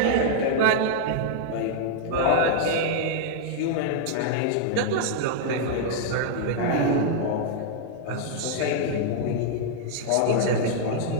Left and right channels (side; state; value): both; different; correlation -0.01